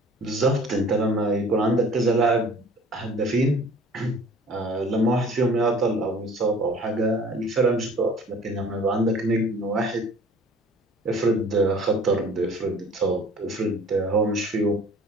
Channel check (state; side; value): normal; both; correlation 0.49